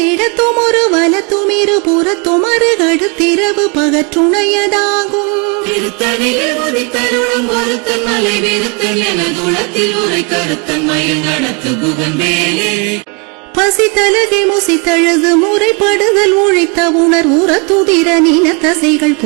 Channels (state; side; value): quieter; left; 33.7 dB